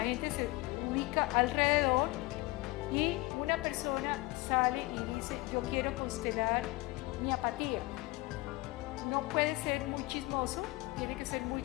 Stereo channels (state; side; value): quieter; right; 21.7 dB